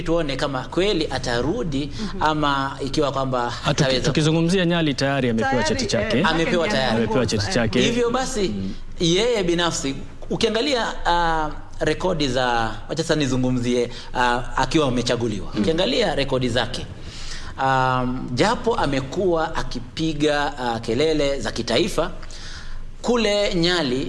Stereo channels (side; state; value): both; identical; correlation 1.00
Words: tuone kama kweli atarudi ama ikiwa kwamba hataweza. Tukizungumzia Nyali tayari amepewa cheti chake. Amepewa cheti chake. Hivyo basi yeye binafsi ukiangalia rekodi za, wacha sasa nizungumzie akiwa amechaguliwa. Ukiangalia rekodi zake, japo amekuwa akipiga kelele za kitaifa, kule